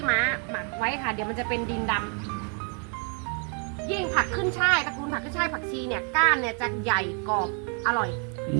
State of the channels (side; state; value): left; quieter; 39.2 dB